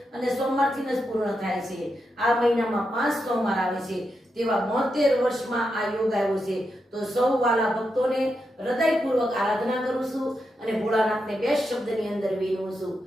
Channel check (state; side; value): normal; both; correlation 0.85